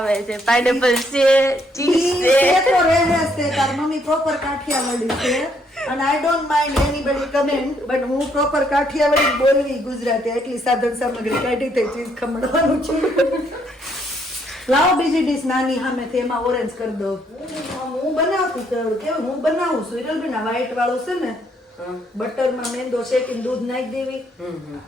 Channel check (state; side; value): normal; both; correlation 0.71